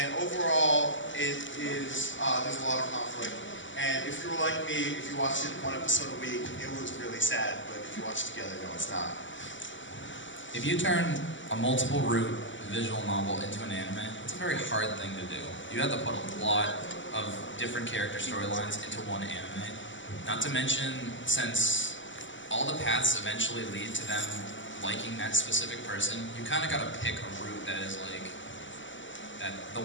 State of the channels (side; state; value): right; late; 0.55 ms